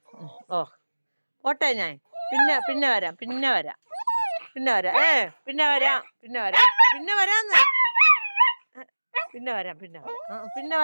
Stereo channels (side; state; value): both; inverted; correlation -1.00